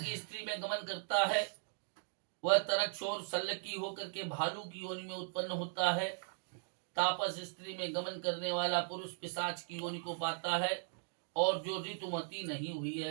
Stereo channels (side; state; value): left; silent; digital silence